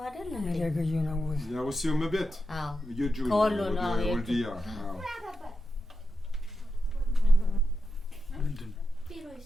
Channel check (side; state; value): both; normal; correlation 0.88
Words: አይደል እንዴ ያገዩ ነው ያሩሲው መቤት የጁ ከወሎ ነው ወልዲያ ምንድን ቢሮ